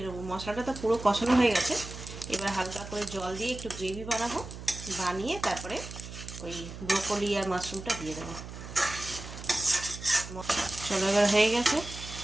নেবো। মশলাটা তো পুরো কষানো হয়ে গেছে, এবার হালকা করে জল দিয়ে একটু গ্রেভি বানাবো, বানিয়ে তারপরে ওই ব্রোকলি আর মাশরুমটা দিয়ে দেবো। চলো এবার হয়ে গেছে,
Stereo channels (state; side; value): noise; right; hum, 11 dB below the sound